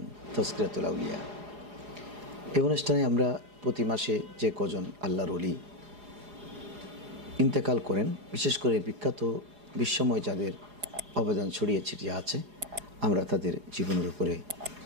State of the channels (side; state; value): left; late; 4.8 ms